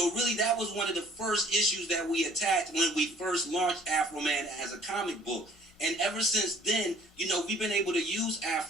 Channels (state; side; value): normal; both; correlation 0.55